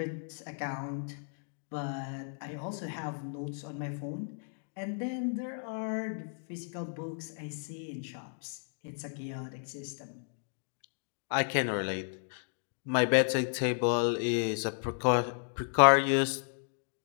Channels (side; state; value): right; silent; digital silence